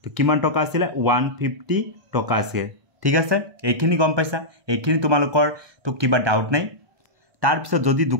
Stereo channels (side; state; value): left; late; 1.2 ms